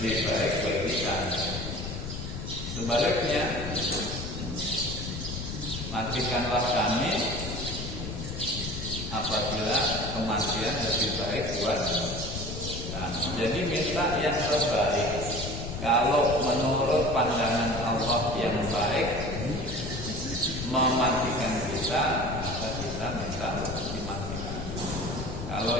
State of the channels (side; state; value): left; noise; rumble, 6 dB below the sound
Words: baik bagi kami. Sebaliknya, matikanlah kami apabila kematian lebih baik buat kami. Jadi minta yang terbaik. Kalau menurut pandangan Allah yang baik mematikan kita, maka kita minta dimatikan. Kalau